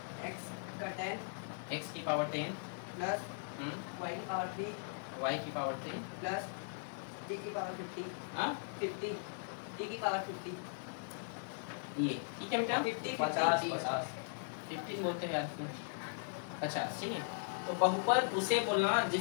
x का 10 x की पावर 10 प्लस y की पावर 3 y की पावर 3 प्लस t की पावर 50 हाँ 50 t की पावर 50। ये ठीक है बेटा, 50 50 बोलते हैं आपने, 50, ठीक है? तो बहुपद उसे बोलना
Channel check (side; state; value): right; silent; digital silence